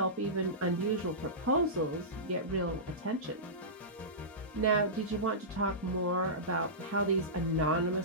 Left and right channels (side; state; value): both; normal; correlation -0.18